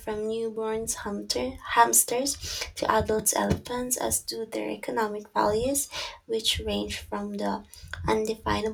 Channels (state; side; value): identical; both; correlation 1.00